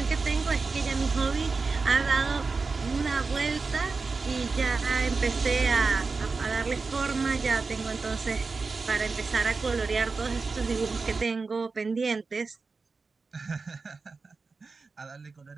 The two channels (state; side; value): quieter; left; 4.3 dB